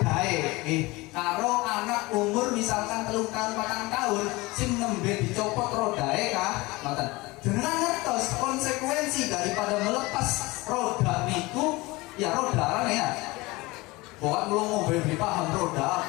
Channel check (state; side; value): quieter; right; 22.2 dB